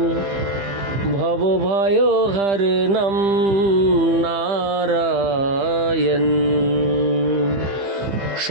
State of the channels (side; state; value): left; late; 15 ms